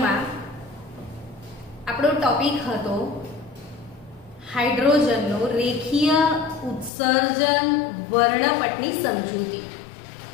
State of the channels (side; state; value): right; drops out; at 6.9 s